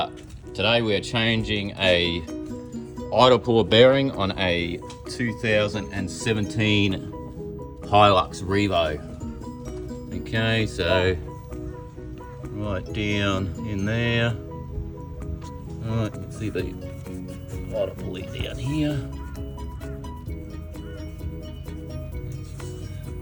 changing a idle puller bearing on a 2017 Hilux Revo. Okay, so right down in there. Alright, you can see the idle pulley down here.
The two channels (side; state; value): both; identical; correlation 1.00